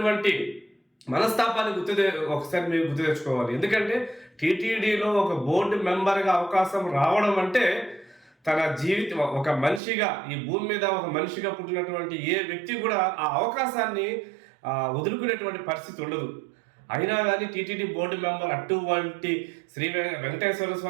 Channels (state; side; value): drops out; left; at 9.8 s